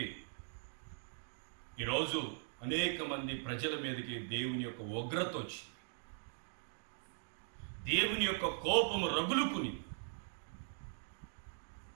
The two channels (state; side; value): silent; left; digital silence